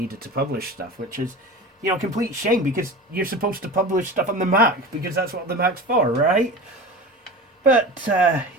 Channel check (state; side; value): normal; both; correlation 0.32